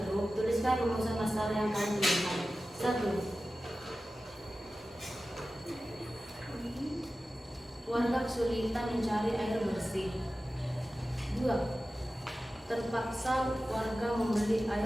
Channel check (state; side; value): normal; both; correlation 0.94